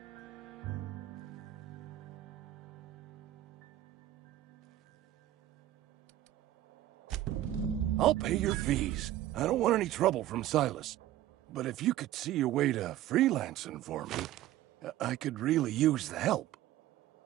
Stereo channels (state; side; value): quieter; left; 13.9 dB